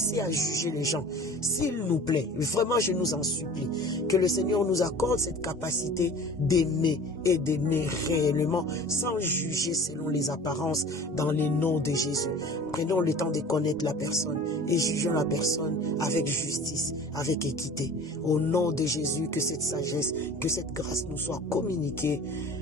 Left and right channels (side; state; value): both; normal; correlation 0.42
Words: à juger les gens. S'il nous plaît, vraiment je nous en supplie, que le Seigneur nous accorde cette capacité d'aimer et d'aimer réellement sans juger selon les apparences dans les noms de Jésus. Prenons le temps de connaître la personne et jugeons la personne avec justice, avec équité. Au nom de Jésus, que cette sagesse, que cette grâce nous soit communiquée